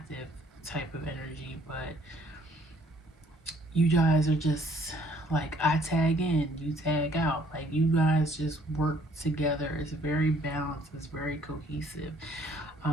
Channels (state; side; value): normal; both; correlation 0.61